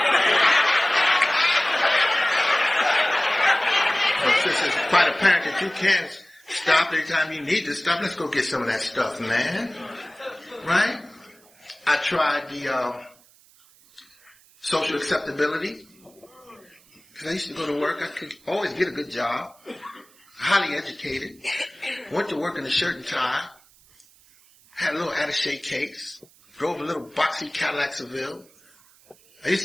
Well, since it's quite apparent that you can stop anytime you need to stop, let's go get some of that stuff, man. Right? I tried the social acceptability. Because I used to go to work. I could always get a good job. Highly educated. Went to work in a shirt and tie. Had a little attaché case. Drove a little boxy Cadillac Seville. I used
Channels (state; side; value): noise; right; hiss, 28 dB below the sound